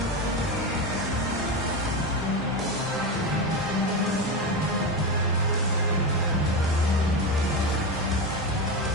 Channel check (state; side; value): normal; both; correlation 0.17